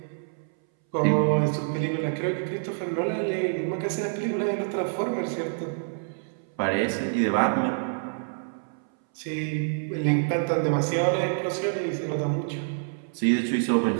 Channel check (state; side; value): silent; left; 60 dB below the other